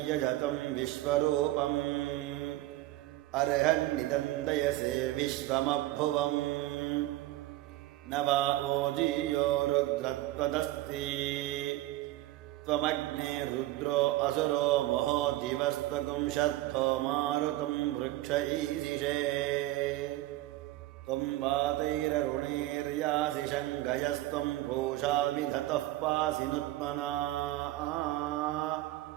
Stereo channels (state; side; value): quieter; left; 16.6 dB